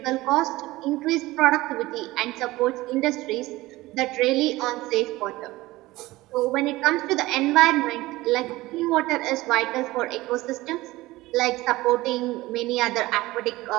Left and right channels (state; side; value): quieter; left; 18.8 dB